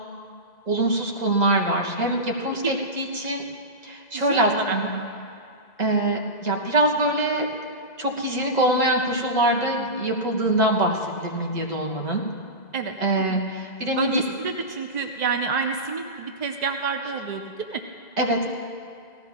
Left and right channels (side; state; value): right; late; 2.0 ms